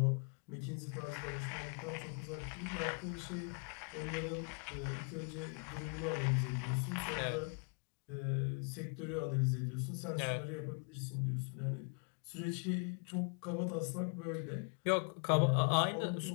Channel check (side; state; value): right; quieter; 38.6 dB